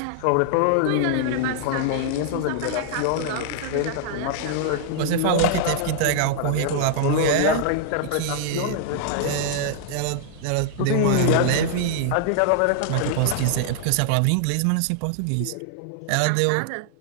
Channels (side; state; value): both; different; correlation -0.01